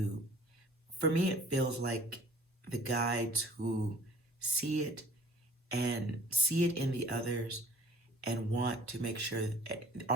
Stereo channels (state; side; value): normal; both; correlation 0.50